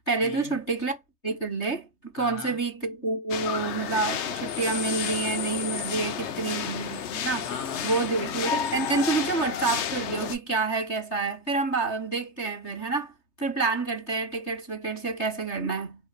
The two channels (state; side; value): late; right; 3.3 ms